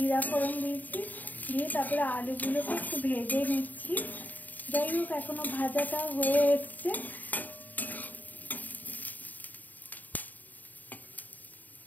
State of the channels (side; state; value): right; late; 0.083 ms